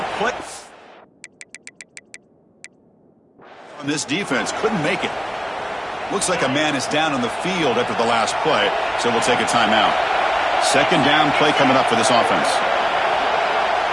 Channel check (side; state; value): both; identical; correlation 1.00